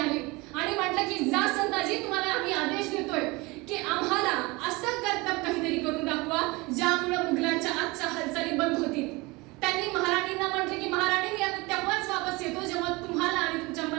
आणि म्हटलं की जा संताजी, तुम्हाला आम्ही आदेश देतोय की आम्हाला असं कर्तव्य काहीतरी करून दाखवा ज्यामुळे मुघलांच्या आजच्या हालचाली बंद होतील. त्यांनी महाराणींना म्हटले की महाराणी मी आता तेव्हाच वापस येतो जेव्हा तुम्हाला आणि तुमच्या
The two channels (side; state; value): left; quieter; 24.1 dB